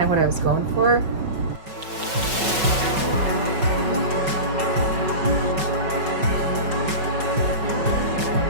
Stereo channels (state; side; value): late; left; 5.3 ms